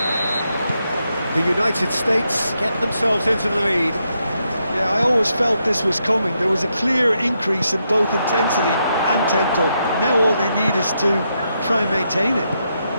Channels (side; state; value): both; inverted; correlation -0.81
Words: The United States get themselves into the lead. Yeah, I always felt this was coming. There was a clear increase in both intensity and tempo. Now all they need is to try and maintain it.